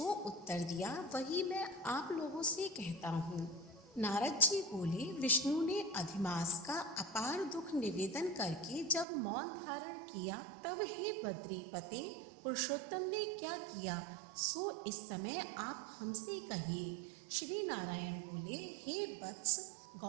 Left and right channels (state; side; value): drops out; left; at 9.1 s